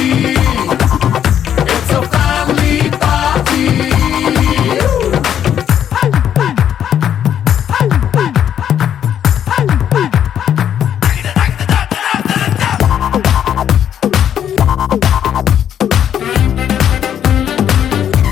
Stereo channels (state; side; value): quieter; right; 9.6 dB